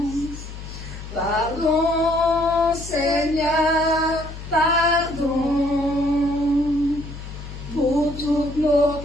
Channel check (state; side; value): noise; left; hum, 11 dB below the sound